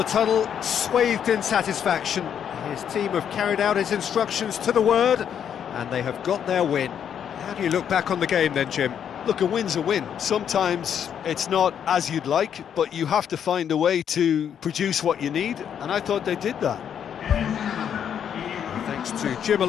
tunnel, swathed in satisfaction. His team have carried out his instructions to the word, and they have got their win. How do you look back on the game then, Jim? Look, a win's a win. Sometimes it's not as you'd like, but you have to find a way to produce what you need, and I thought they did that. Thanks to Jim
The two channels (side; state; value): right; quieter; 8.6 dB